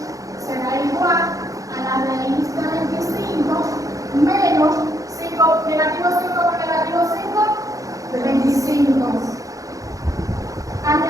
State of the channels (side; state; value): left; late; 0.16 ms